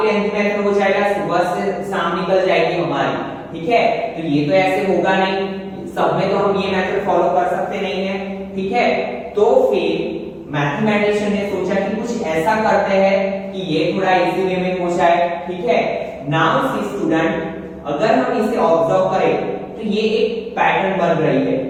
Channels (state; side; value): identical; both; correlation 1.00